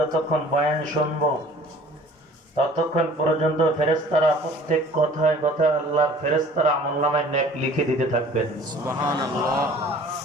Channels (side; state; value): both; normal; correlation 0.49